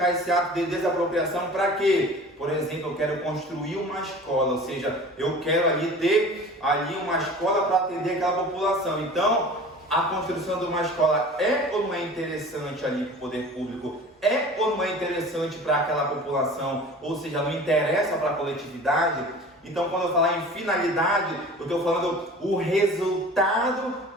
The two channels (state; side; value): normal; both; correlation 0.41